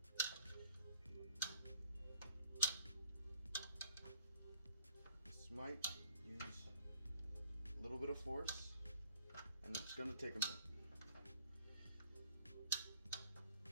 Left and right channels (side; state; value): both; inverted; correlation -0.57